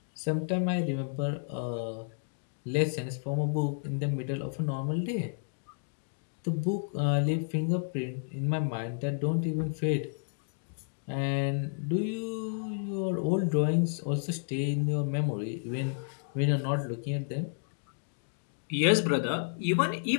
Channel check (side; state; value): right; silent; digital silence